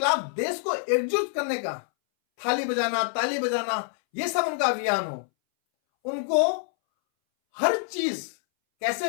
देश को एकजुट करने का थाली बजाना, ताली बजाना, यह सब उनका अभियान हो, उनको हर चीज कैसे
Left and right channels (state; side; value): silent; right; 61 dB below the other